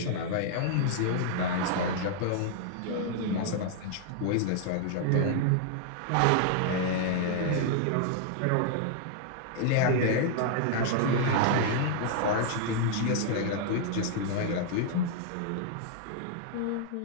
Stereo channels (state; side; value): different; both; correlation -0.01